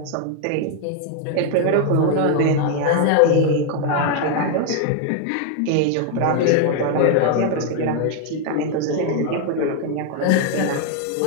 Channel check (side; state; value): both; different; correlation 0.00